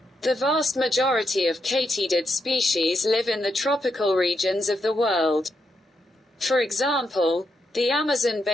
The vast majority of katydid species live in the tropical regions of the world. For example, the Amazon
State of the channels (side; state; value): both; normal; correlation 0.82